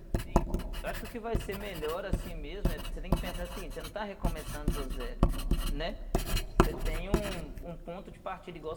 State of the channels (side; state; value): both; identical; correlation 1.00